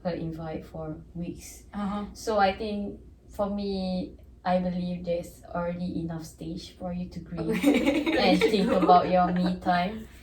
her invite for weeks. So I think for me, I believe there's already enough stage for you to grieve and think about your me time.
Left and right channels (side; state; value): both; identical; correlation 1.00